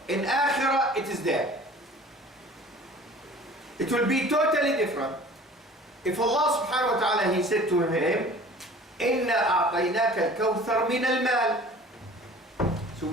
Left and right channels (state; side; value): normal; both; correlation 0.46